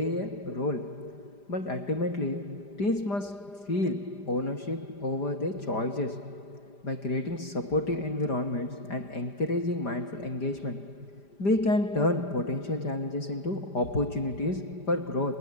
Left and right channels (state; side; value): late; right; 5.0 ms